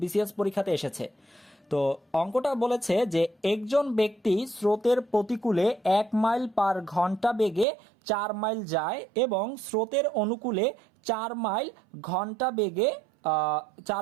বিসিএস পরীক্ষাতে এসেছে। তো অঙ্কটা বলেছে যে একজন ব্যক্তি স্রোতের প্রতিকূলে 1 মাইল পার ঘন্টা বেগে 4 মাইল যায় এবং স্রোতের অনুকূলে 4 মাইল ঘন্টা বেগে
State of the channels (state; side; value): drops out; left; at 7.7 s